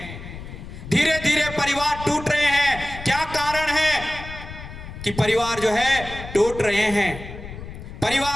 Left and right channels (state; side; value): noise; left; rumble, 12 dB below the sound